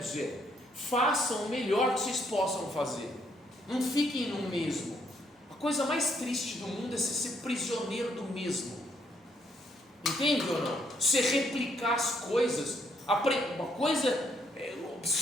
Façam o melhor que vocês possam fazer. Não fiquem no mesmo. A coisa mais triste do mundo é ser prisioneiro do mesmo. Entende ou não? Você replicar as coisas. Uma coisa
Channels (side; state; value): both; normal; correlation 0.72